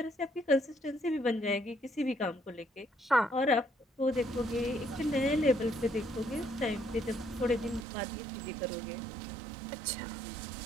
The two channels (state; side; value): drops out; left; at 7.9 s